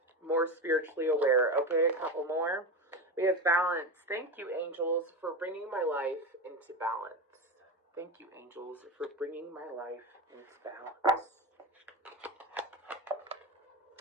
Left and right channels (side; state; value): both; normal; correlation 0.20